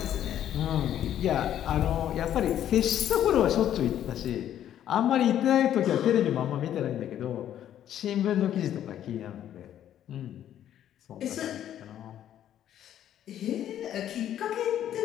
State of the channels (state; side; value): quieter; right; 10.9 dB